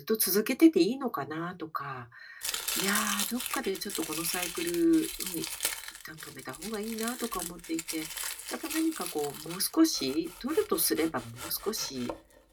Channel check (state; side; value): identical; both; correlation 1.00